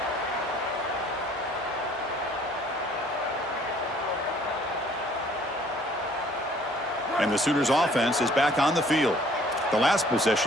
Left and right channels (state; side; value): normal; both; correlation 0.57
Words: And the Sooners offense is back on the field. The last